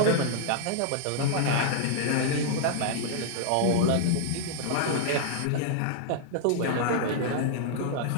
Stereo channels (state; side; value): different; both; correlation -0.01